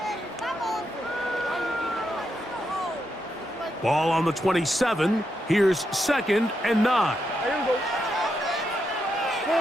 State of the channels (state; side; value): normal; both; correlation 0.83